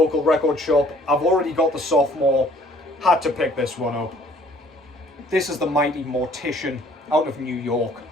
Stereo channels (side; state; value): both; normal; correlation 0.57